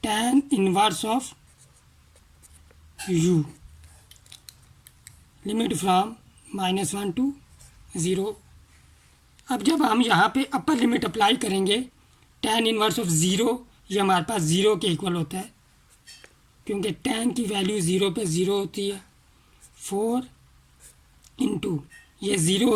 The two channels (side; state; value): both; identical; correlation 1.00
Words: tan inverse of u, limit from -1 to 0। अब जब हम यहाँ पे अपर लिमिट अप्लाई करेंगे tan इनवर्स ऑफ 0, ये हमारे पास 0 के इक्वल होता है, क्योंकि tan की वैल्यू 0 पे 0 होती है। 4 इंटू ये 0